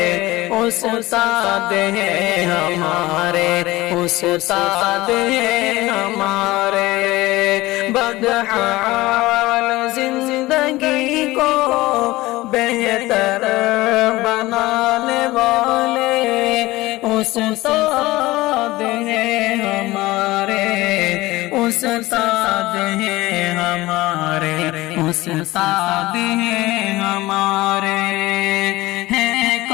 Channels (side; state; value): right; quieter; 19.1 dB